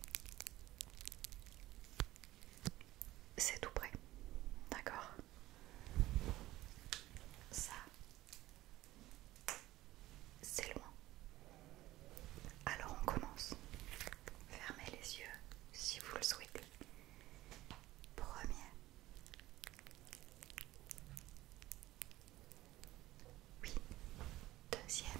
c'est tout près, d'accord? Ça, c'est loin. Alors on commence. Fermez les yeux si vous le souhaitez. Premier. Oui. Deuxième.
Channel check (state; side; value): quieter; left; 16.5 dB